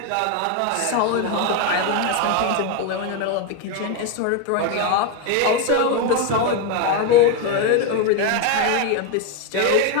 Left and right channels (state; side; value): different; both; correlation 0.02